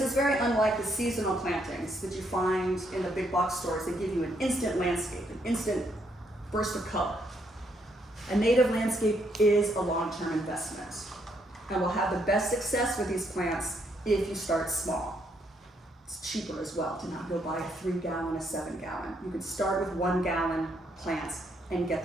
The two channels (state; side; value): normal; both; correlation 0.74